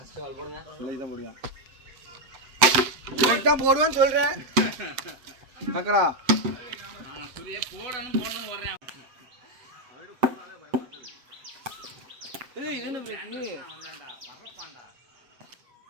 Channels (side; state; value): left; late; 7.4 ms